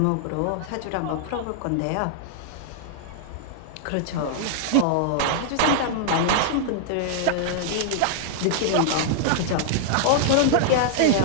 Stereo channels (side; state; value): both; different; correlation -0.01